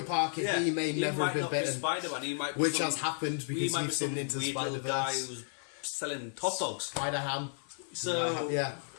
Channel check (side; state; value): right; silent; 56 dB below the other